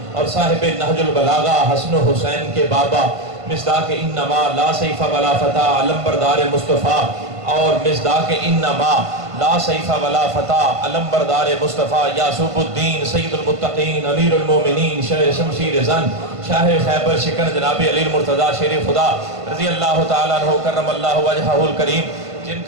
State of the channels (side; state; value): left; late; 1.5 ms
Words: اور صاحب نہج البلاغہ حسن و حسین کے بابا مصداق انما لا سیف ولا فتح علمبردار مصطفیٰ اور مصداق انما لا سیف ولا فتح علمبردار مصطفیٰ یاسوب الدین سید المتقین امیر المومنین شمشیر زن شاہ خیبر شکن جناب علی المرتضیٰ شیر خدا رضی اللہ تعالیٰ عنہ کرم اللہ وجہہ الکریم جن